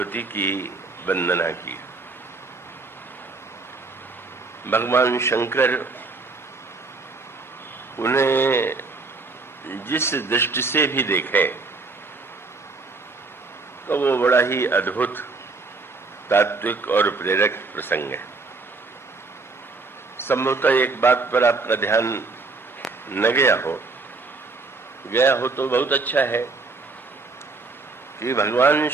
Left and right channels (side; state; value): left; quieter; 3.9 dB